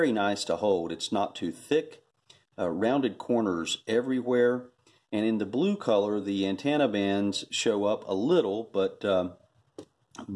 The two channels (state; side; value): identical; both; correlation 1.00